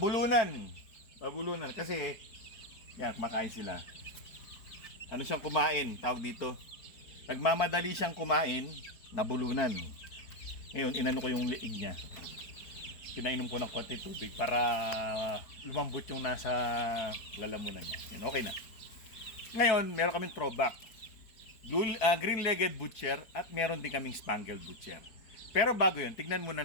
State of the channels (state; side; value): late; right; 4.6 ms